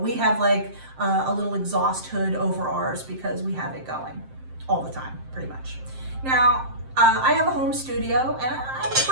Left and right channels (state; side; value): late; left; 7.6 ms